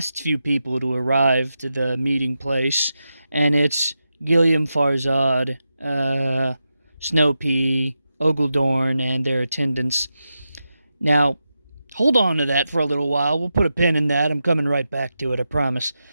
few people to arrive to the meeting place, and it's Gilliam Farzad, Snowpea, Ogledorn, and their attendants. Now, hold on to that for a little while. We'll put a pin in that. I'm coming right back to it, I promise.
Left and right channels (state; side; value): inverted; both; correlation -0.89